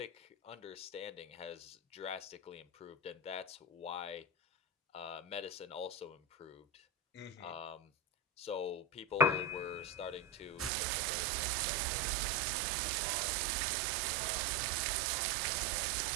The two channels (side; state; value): left; drops out; at 10.7 s